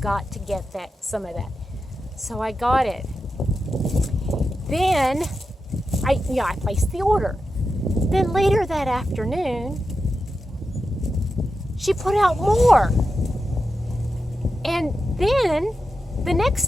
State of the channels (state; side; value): normal; both; correlation 0.90